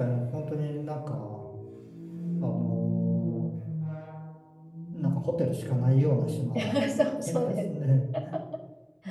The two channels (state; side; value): identical; both; correlation 1.00